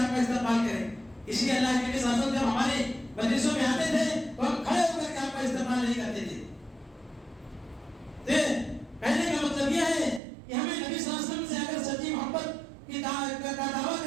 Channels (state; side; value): drops out; left; at 10.2 s